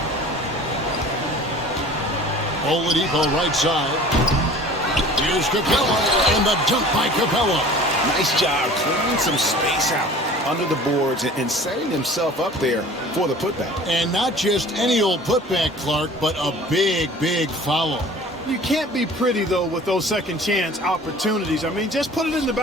Oladipo right side. Here's Capella, and the dunk by Capella. Nice job clearing some space out under the boards and setting himself up there for the putback. And not just any old putback, Clark, but a big, big foul. You can't be pretty, though, with those second chance opportunities. I mean, just put it in the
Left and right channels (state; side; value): normal; both; correlation 0.45